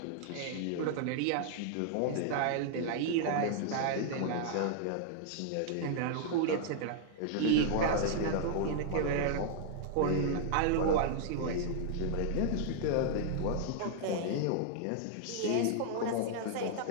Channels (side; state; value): both; different; correlation -0.01